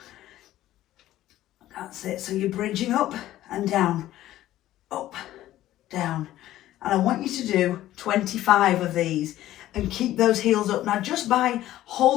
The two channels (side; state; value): right; quieter; 14.2 dB